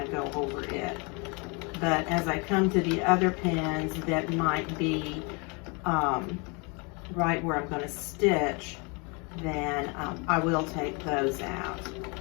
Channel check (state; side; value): quieter; right; 31.1 dB